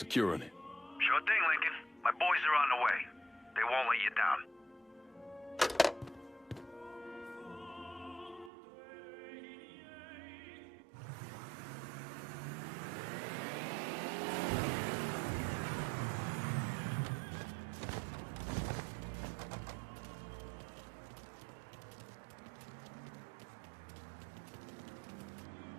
it. Sure thing, Lincoln. My boys are on the way. They won't let you down.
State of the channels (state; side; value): drops out; left; at 8.5 s